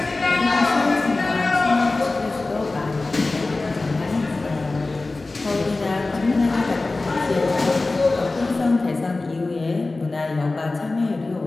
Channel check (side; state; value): right; quieter; 3.3 dB